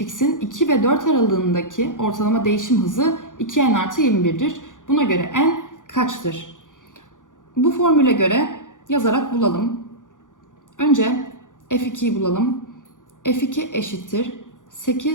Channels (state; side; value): late; right; 0.87 ms